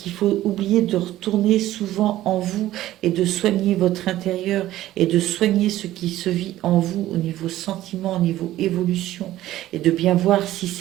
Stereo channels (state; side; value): quieter; left; 14.6 dB